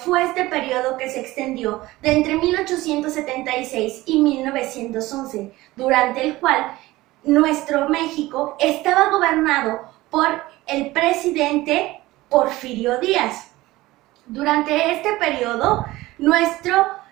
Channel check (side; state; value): left; quieter; 18.5 dB